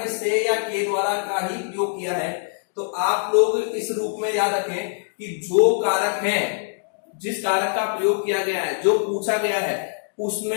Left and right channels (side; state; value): right; silent; digital silence